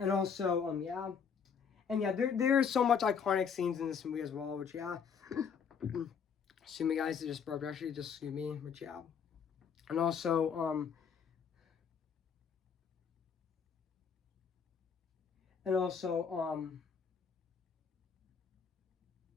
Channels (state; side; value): quieter; right; 6.7 dB